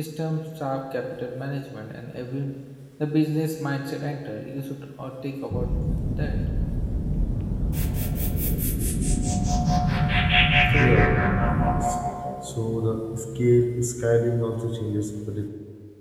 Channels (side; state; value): both; identical; correlation 1.00